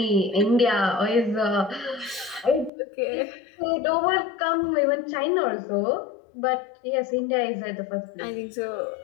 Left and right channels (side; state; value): right; drops out; at 2.7 s